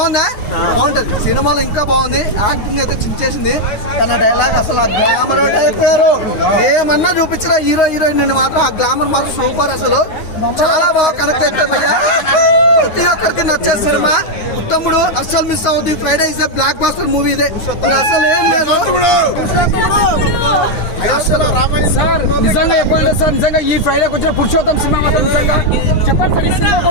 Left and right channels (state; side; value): late; right; 9.5 ms